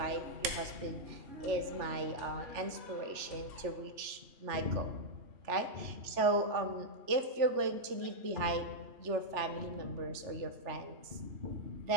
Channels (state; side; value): late; left; 3.4 ms